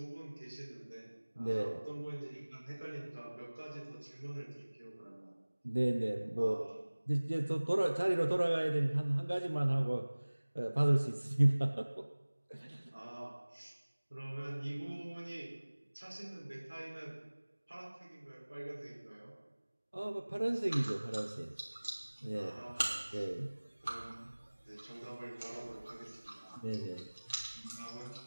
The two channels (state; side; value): inverted; both; correlation -1.00